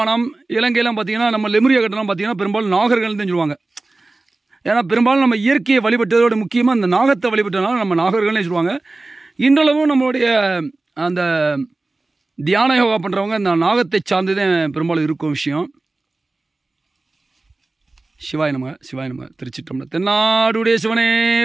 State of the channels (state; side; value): quieter; left; 3.2 dB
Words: இலங்கையெல்லாம் பார்த்தீங்கன்னா நம்ம லெமுரியா கட்டணம் பார்த்தீங்கன்னா பெரும்பாலும் நாகர்கள் தான் சொல்லுவாங்க. ஏன்னா பெரும்பாலும் நம்ம இயற்கையை வழிபட்டதோட முக்கியமாக அந்த நாகத்தை வழிபட்டதுனால நம்ம நாகர்கள்னே சொல்லுவாங்க. இன்றளவும் நம்மளுடைய அந்த தியான யோகா பண்ணுறவங்க அந்த நாகத்தை சார்ந்து தான் பெரும்பாலும் இருக்கும் விஷயம். சிவாய நமக சிவாய நமக. திருச்சிற்றம்பலம். தென்னாடுடைய சிவனே